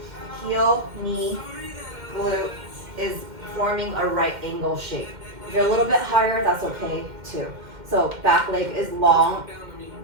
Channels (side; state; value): left; late; 2.1 ms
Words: heel, knee, glute is forming a right angle shape. If you're a little bit higher, that's okay too. So back leg is long.